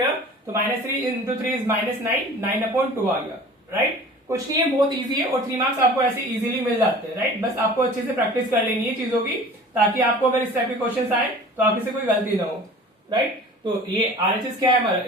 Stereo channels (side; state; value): both; normal; correlation 0.43